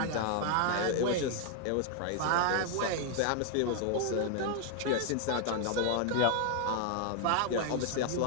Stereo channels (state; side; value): different; both; correlation 0.00